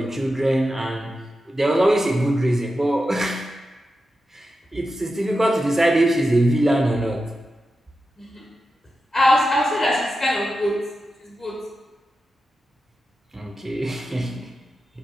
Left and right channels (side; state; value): both; normal; correlation 0.91